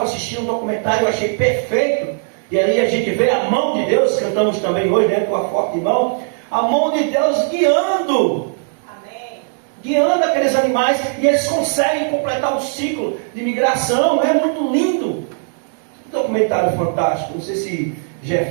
assistindo um documentário, eu achei perfeito, e aí a gente vê a mão de Deus, cantamos também hoje, né, tua forte mão, a mão de Deus guiando, guiando aqueles animais, e eles conseguem completar o ciclo de migração. É muito lindo. Um documentário fantástico. Não sei se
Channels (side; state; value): left; silent; 60 dB below the other